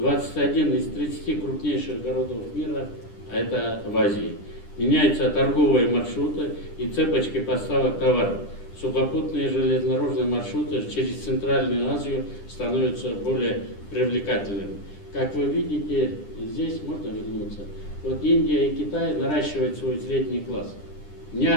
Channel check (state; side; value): late; right; 10 ms